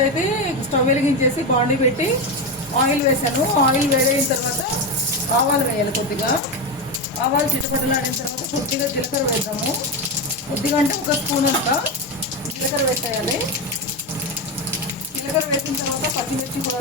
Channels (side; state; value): both; normal; correlation 0.14